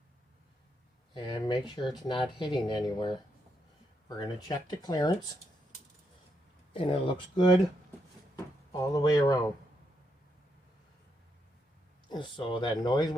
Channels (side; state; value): both; normal; correlation 0.80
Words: and make sure it's not hitting anywhere. We're going to check the clearance, and it looks good all the way around. So that noise